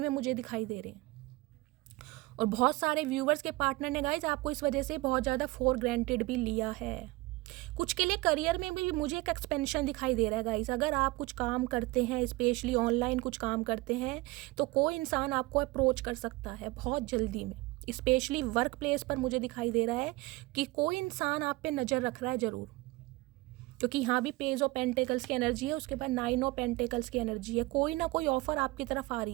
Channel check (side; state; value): left; quieter; 21.8 dB